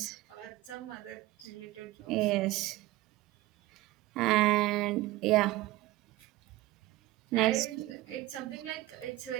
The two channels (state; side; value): quieter; left; 17.9 dB